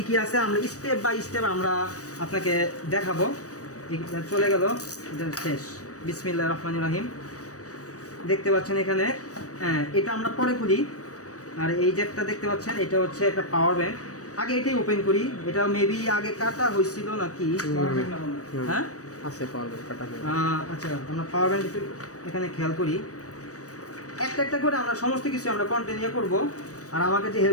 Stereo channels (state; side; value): late; right; 0.66 ms